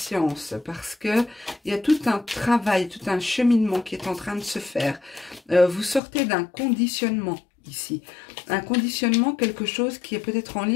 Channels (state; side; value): drops out; right; at 6.0 s